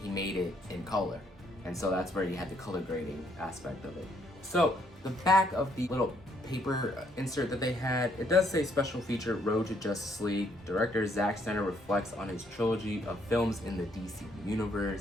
he made it in color. And so that's where you had the color grading aspect of it. So the back of the little paper insert that they had, it does say special feature Road to Justice League. Director Zack Snyder reflects on his trilogy of films in the DC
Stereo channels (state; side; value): normal; both; correlation 0.70